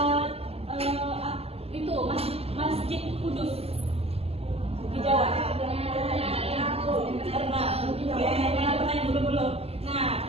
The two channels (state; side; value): late; left; 0.29 ms